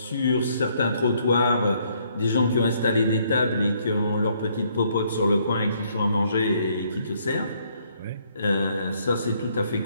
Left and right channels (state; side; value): inverted; both; correlation -0.68